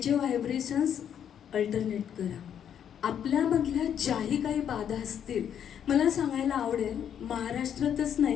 व्हायब्रेशन्स अल्टरनेट करा. आपल्यामधल्या ज्याही काही बाधा असतील, मला सांगायला आवडेल, महाराष्ट्रातच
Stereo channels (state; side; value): quieter; right; 9.0 dB